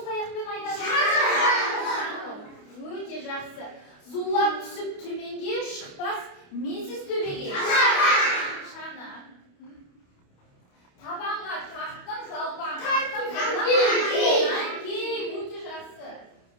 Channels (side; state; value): right; late; 28 ms